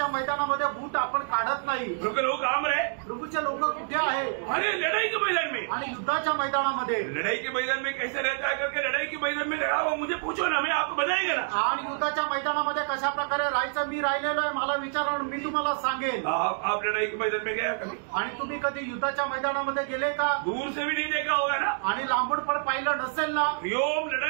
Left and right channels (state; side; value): silent; left; digital silence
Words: मैदानामध्ये बूट आपण काढत नाही। प्रभु के लोग काम रहे, प्रभूचे लोक कुठे आहे? अरे लड़ाई के मैदान में। आणि युद्धाच्या मैदानामध्ये लड़ाई के मैदान में कैसे रहता है करके लड़ाई के मैदान में लड़ा हुआ मुझे पूछो ना, मैं आपको बताएगा ना। आणि युद्धाच्या मैदानामध्ये कशा प्रकारे राहायचं मी राहिलेलो आहे, मला विचारा मी तुम्हाला सांगेन। आप लड़ाई के मैदान में गया कभी? आणि तुम्ही कधी युद्धाच्या मैदानामध्ये गेले का? दूर से भी नहीं देखा होगा ना, आणि लांबून पण पाहिलं नसेल ना। योम